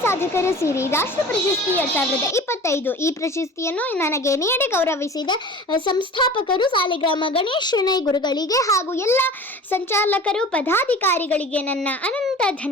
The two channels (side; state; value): both; normal; correlation 0.40